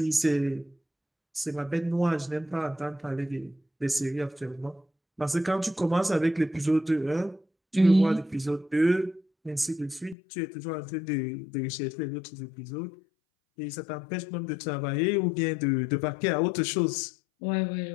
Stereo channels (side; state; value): right; drops out; at 10.2 s